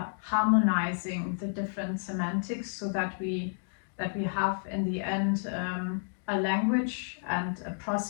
harmonizing the different semantics, so that we have in the end a language and a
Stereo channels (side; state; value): right; silent; digital silence